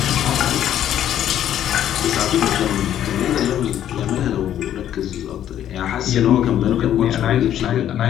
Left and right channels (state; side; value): quieter; right; 10.9 dB